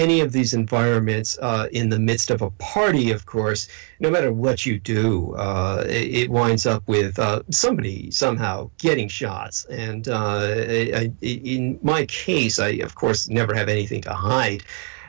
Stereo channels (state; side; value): quieter; left; 37.8 dB